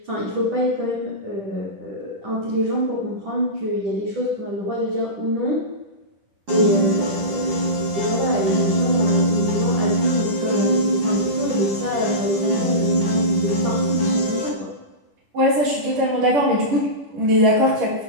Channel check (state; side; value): late; left; 10 ms